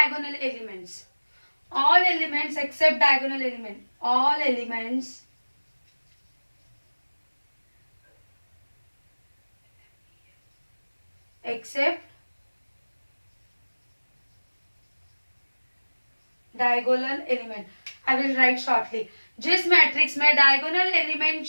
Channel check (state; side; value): inverted; both; correlation -1.00